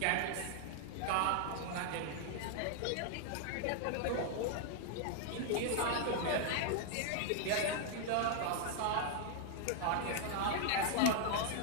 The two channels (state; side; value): different; both; correlation 0.00